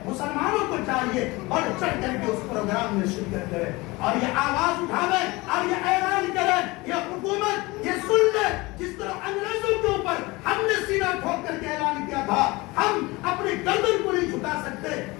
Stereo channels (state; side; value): quieter; right; 22.8 dB